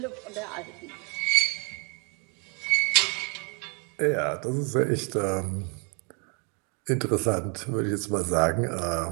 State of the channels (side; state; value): left; quieter; 34.9 dB